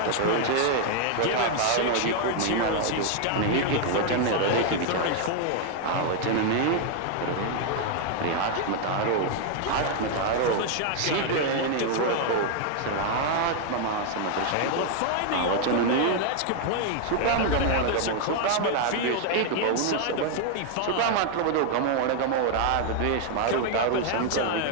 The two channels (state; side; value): different; both; correlation 0.00